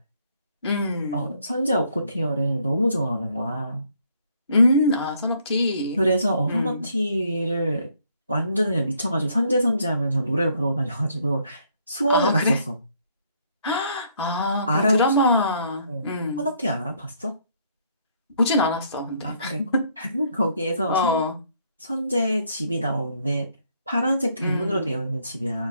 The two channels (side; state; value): both; inverted; correlation -0.68